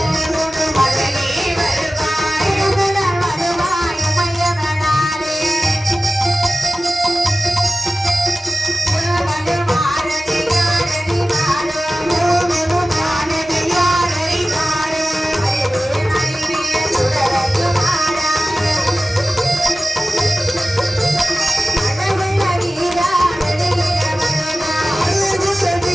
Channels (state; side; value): normal; both; correlation 0.96